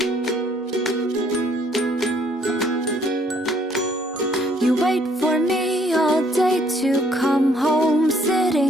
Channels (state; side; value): normal; both; correlation 0.64